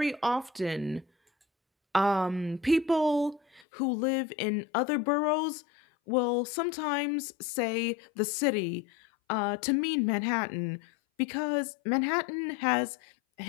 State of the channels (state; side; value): drops out; right; at 3.7 s